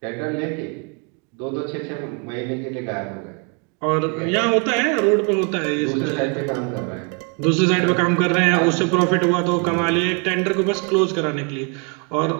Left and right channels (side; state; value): left; quieter; 34.7 dB